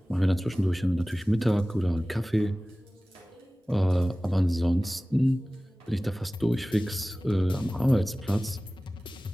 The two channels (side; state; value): both; normal; correlation 0.98